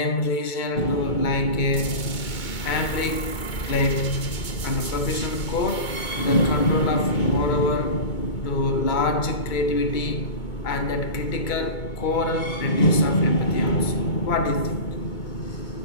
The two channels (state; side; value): late; right; 2.2 ms